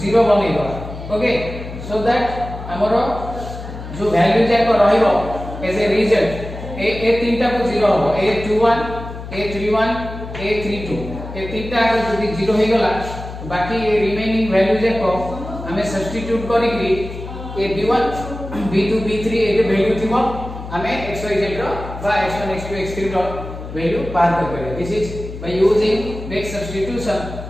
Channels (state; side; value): noise; left; hum, 10 dB below the sound